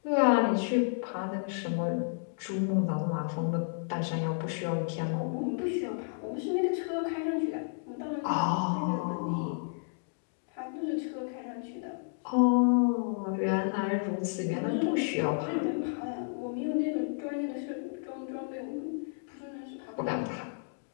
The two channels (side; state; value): right; silent; digital silence